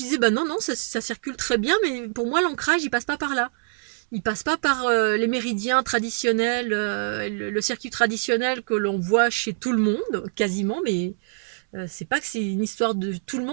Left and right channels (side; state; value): left; silent; 62 dB below the other